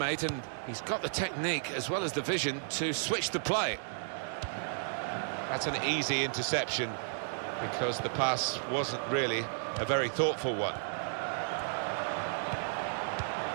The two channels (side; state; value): left; silent; digital silence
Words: and he's got the technique as well as the vision to switch the play. That's an easy interception because the pass wasn't really a very thoughtful one.